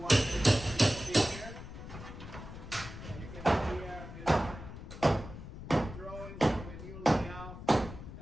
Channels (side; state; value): left; noise; rumble, 12 dB below the sound